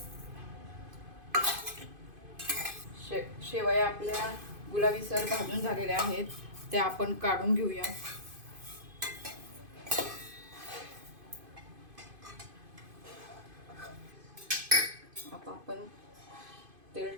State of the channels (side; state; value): left; late; 2.5 ms